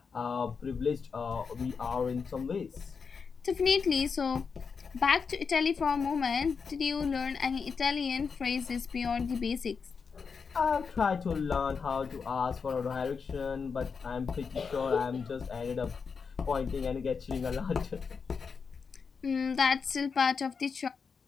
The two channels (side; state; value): right; quieter; 5.6 dB